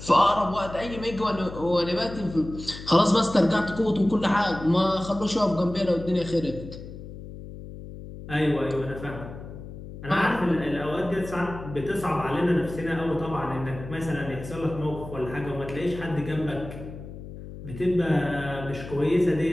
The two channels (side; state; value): left; noise; hum, 12 dB below the sound